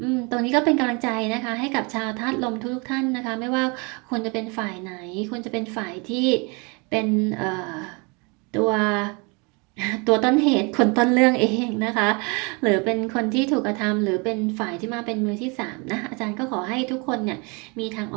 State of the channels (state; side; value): quieter; left; 30.5 dB